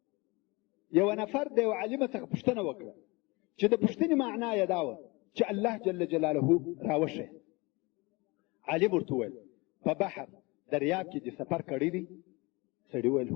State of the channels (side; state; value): right; quieter; 25.5 dB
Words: نفر د یو عالم څخه پوښتنه وکړه چې د پوښتنې معنا یې دا وه چې الله جل جلاله راوښیه. عالم ورته وویل په بحر دریاب کې دې سفر کړی دی؟ سړي وویل